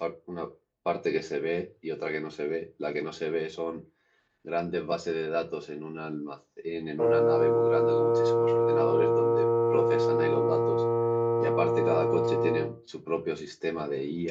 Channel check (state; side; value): identical; both; correlation 1.00